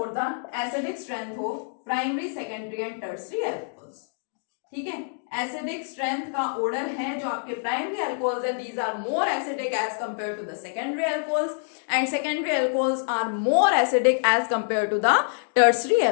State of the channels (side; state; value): right; silent; digital silence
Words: the acidic strength of primary, secondary and tertiary alcohols, ठीक है। एसिडिक स्ट्रेंथ का ऑर्डर है जो आपके प्राइमरी अल्कोहल्स है, these are more acidic as compare to the secondary alcohols, and secondary alcohols are more acidic as compare to the tertiary